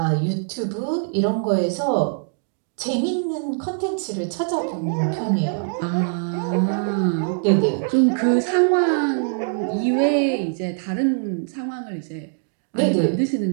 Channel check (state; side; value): silent; left; digital silence